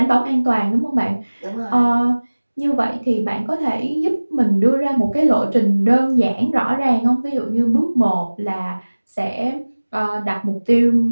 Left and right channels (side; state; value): both; inverted; correlation -1.00